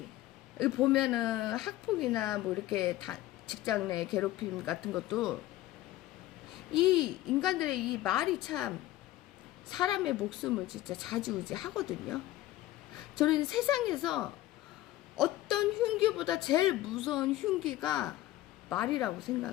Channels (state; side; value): quieter; right; 15.6 dB